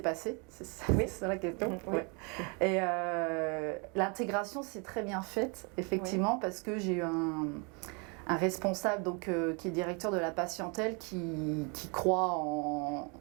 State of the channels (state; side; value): quieter; left; 33.0 dB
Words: C'est ça la question. Oui. Ouais. Et l'intégration s'est très bien faite, effectivement, parce que j'ai eu un responsable qui est directeur de la patientèle qui croit